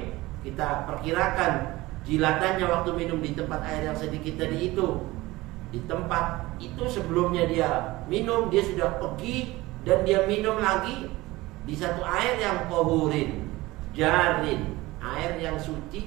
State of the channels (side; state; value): left; quieter; 19.6 dB